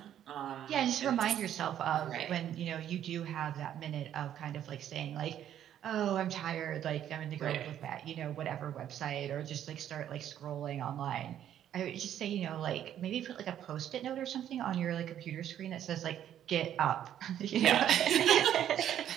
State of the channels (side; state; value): left; quieter; 10.7 dB